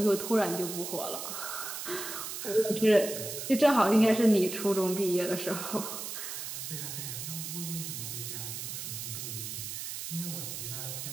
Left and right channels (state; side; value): noise; right; hiss, 6 dB below the sound